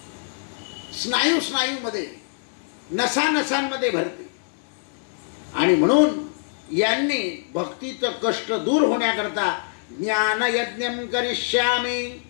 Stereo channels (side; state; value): right; silent; 63 dB below the other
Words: स्नायूमध्ये, नसानसांमध्ये भरते. आणि म्हणून यांनी भक्तीचं कष्ट दूर होण्याकरता ज्ञानयज्ञं करिष्यामि,